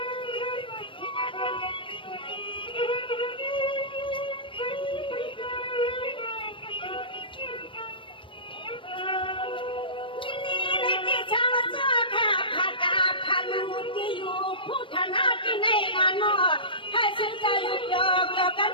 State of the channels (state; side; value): late; right; 0.25 ms